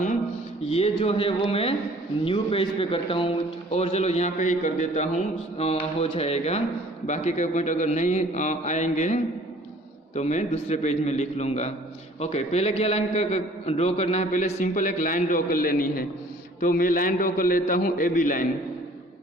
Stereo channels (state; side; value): normal; both; correlation 0.53